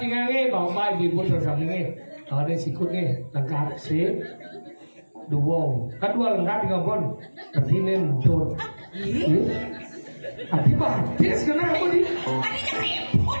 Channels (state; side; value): inverted; both; correlation -1.00